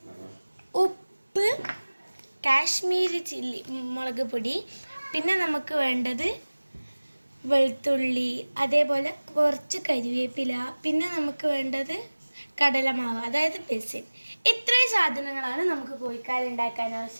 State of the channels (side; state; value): both; inverted; correlation -1.00